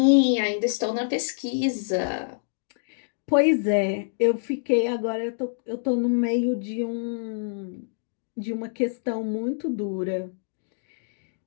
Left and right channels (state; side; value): silent; right; digital silence